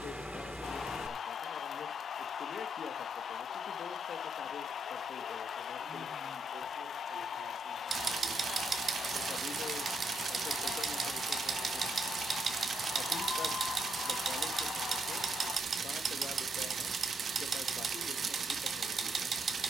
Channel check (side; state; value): both; normal; correlation 0.76